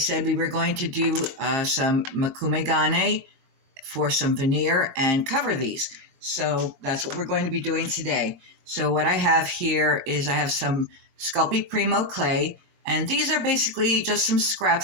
we were going to do some Makume Gane for some veneer and cover these. So that's what we're going to be doing today. So what I have here is I have some Sculpey Primo clay, and these are basically just some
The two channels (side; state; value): left; late; 21 ms